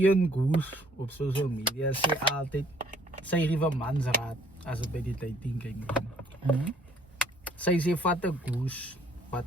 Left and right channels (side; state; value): both; normal; correlation 0.61